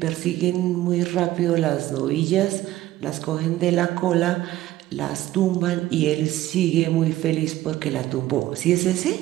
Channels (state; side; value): quieter; left; 15.1 dB